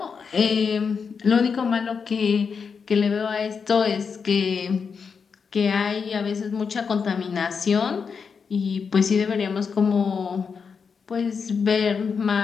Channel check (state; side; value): quieter; right; 5.8 dB